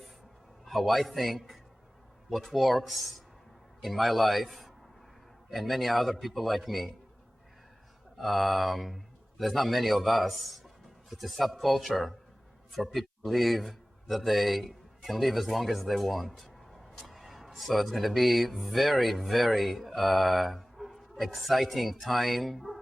how I think, what works in my life, and many other people like me. There's not many of us. It's a subculture for people to believe that they can live as long as they want. So it's going to be very, very exciting time,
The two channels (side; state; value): both; normal; correlation 0.98